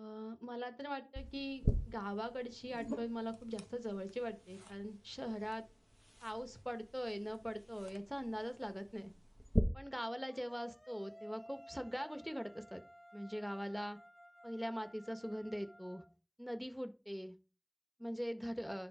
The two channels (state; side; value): identical; both; correlation 1.00